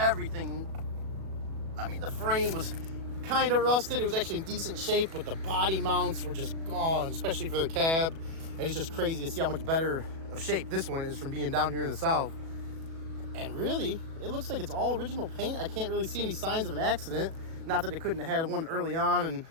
I mean, the frame was kind of rusted. It was actually in decent shape, but the body mounts were just gone, especially for the cab. And it's just crazy to see how much better of shape this one is from being down here in the South. And really, it looks like it's all original paint. I can't really see any signs of an accident. Not that it couldn't have had one early on and,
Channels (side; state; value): left; late; 37 ms